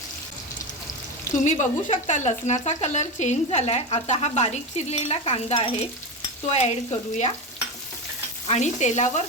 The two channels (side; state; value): both; normal; correlation 0.18